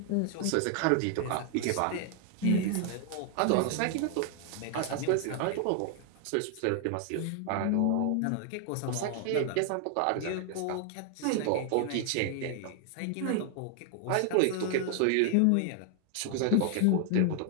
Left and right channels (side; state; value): both; different; correlation 0.00